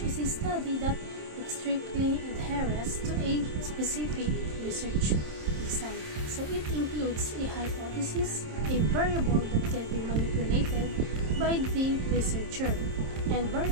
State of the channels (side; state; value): left; late; 27 ms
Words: is a study that strictly adheres to a specific research design. So, it includes a hypothesis, a variable that can be manipulated by the researcher, and